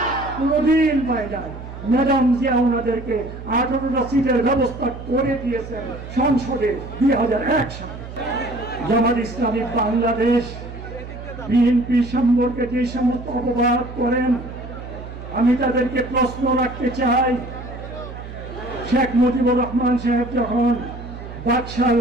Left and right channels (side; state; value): right; noise; hum, 12 dB below the sound